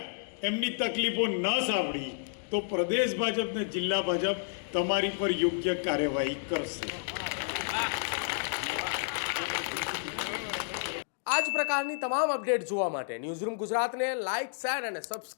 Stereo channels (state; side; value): silent; right; digital silence